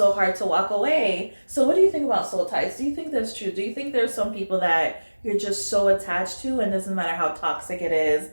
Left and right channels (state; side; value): inverted; both; correlation -1.00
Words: hard to walk away. So what do you think about soul ties? Do you think that's true? Do you think there's some people that you're just so attached to, and doesn't matter how toxic it is,